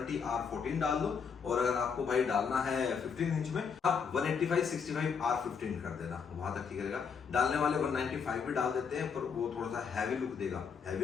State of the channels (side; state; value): right; quieter; 6.2 dB